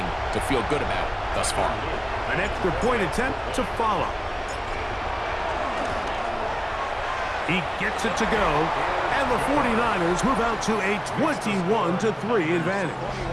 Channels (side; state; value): both; identical; correlation 1.00